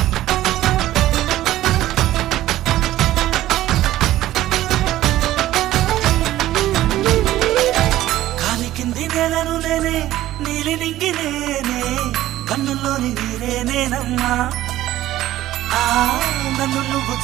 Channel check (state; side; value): quieter; left; 14.6 dB